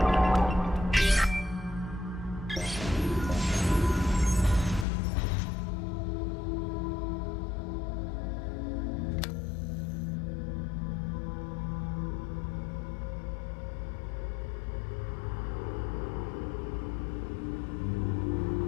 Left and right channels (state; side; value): drops out; right; at 4.9 s